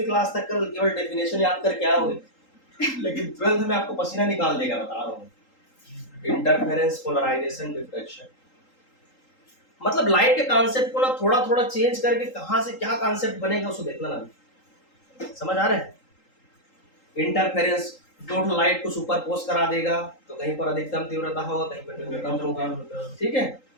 क्लास तक का केवल डेफिनेशन याद करके आओगे लेकिन 12th में आपको पसीना निकाल देगा, बता रहा हूँ। इंटरफेरेंस, पोलराइजेशन, डिफ्रैक्शन, मतलब लाइट के कॉन्सेप्ट को ना थोड़ा थोड़ा चेंज करके कहां से क्या कॉन्सेप्ट बनेगा उसको देखना ना। समझ आ रहा है। इंटरफेरेंस, दो लाइट को सुपरपोज करा देगा तो कहीं पर अधिकतम तीव्रता होगा, कहीं पर न्यूनतम होगा, ठीक है।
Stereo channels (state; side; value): late; right; 3.8 ms